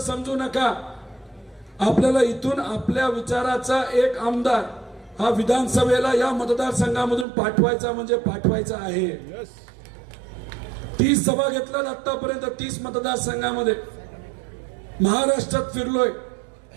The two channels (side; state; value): left; drops out; at 7.2 s